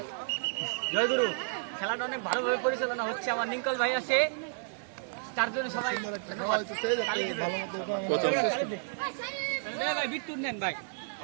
জয়গুরু, খেলাটা অনেক ভালোভাবে পরিচালনা হচ্ছে। আমার নিকল ভাই আছে, তার জন্য সবাই প্রথম ভাই বিট্টুর নেন ভাই।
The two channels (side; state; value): left; silent; digital silence